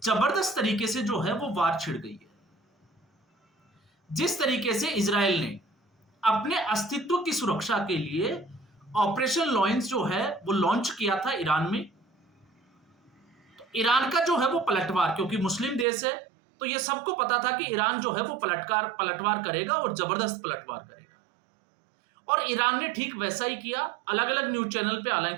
जबरदस्त तरीके से जो है वो वार छिड़ गई है। जिस तरीके से इजराइल ने अपने अस्तित्व की सुरक्षा के लिए ऑपरेशन लॉयंस जो है वो लॉन्च किया था ईरान में, तो ईरान का जो है वो पलटवार, क्योंकि मुस्लिम देश है तो ये सबको पता था कि ईरान जो है वो पलटवार करेगा और जबरदस्त पलटवार करेगा, और ईरान ने ठीक वैसा ही किया। अलग अलग न्यूज चैनल पे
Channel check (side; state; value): left; drops out; at 15.9 s